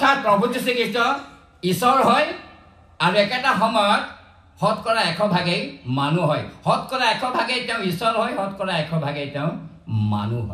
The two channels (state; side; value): identical; both; correlation 1.00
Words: প্ৰভু যীশুখ্ৰীষ্ট ঈশ্বৰ হয় আৰু একেটা সময়ত শতকৰা 100% মানুহ হয় শতকৰা 100% তেওঁ ঈশ্বৰ হয় শতকৰা 100% তেওঁ মানুহ